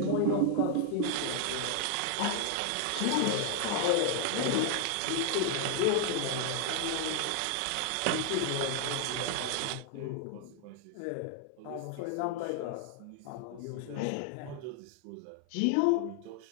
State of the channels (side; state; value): both; different; correlation 0.00